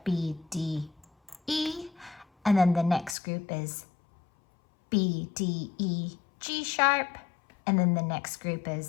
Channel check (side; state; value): right; drops out; at 3.2 s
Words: B, D, E, and then the next group is B, D, E, G sharp, and then the next group